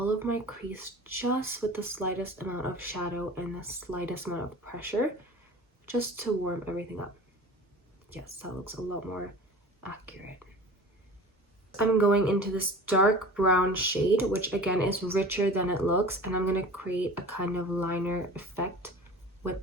of my crease just with the slightest amount of shadow and the slightest amount of pressure, just to warm everything up. Yes, that looks a lot more accurate. I'm going into this dark brown shade, which again is richer than it looks, and I'm going to create a kind of liner effect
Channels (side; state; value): both; normal; correlation 0.39